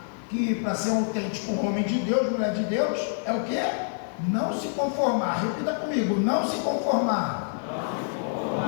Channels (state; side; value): silent; right; digital silence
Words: que para ser um autêntico homem de Deus, mulher de Deus, é o quê? Não se conformar. Repita comigo: não se conformar.